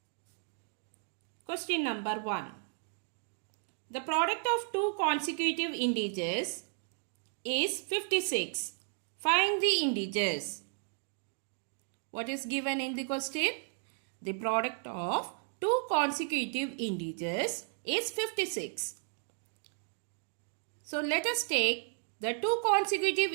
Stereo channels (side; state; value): left; silent; 55 dB below the other